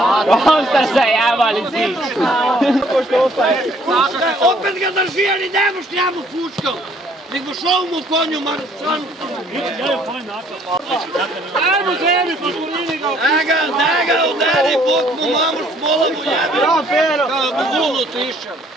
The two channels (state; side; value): normal; both; correlation 0.62